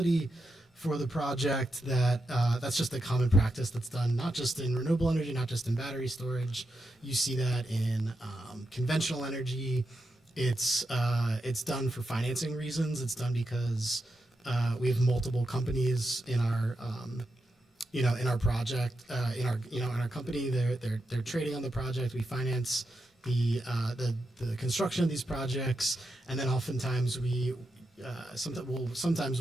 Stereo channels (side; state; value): both; normal; correlation 0.86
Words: for the project. That's just a common practice that's done not just in renewable energy, not just in battery storage. You see that in conventional energy. It's done for financing reasons. It's done because we have multiple companies in our in our project, in our company. They're trading on the project. We finance the construction of these projects, and then oftentimes